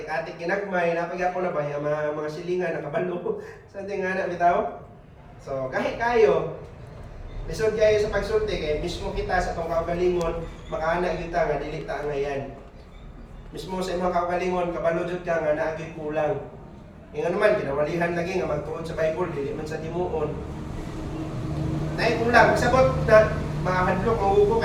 ginagmay, napaghapon na ba yung mga silingan nakabalo sa ating nga bitaw. So kahit kayo lisod kayo sa pagsulti kay mismo kita sa tong kaugalingon makaana kita nga dili ta ngayan. Mismo sa imong kaugalingon kabalo jud ka nga naagi kulang. Ingon naman kinawalihan lagi nga magtuon sa Bible dili man sa timuon. Nay kulang sabot na mahadlok maugo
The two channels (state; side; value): identical; both; correlation 1.00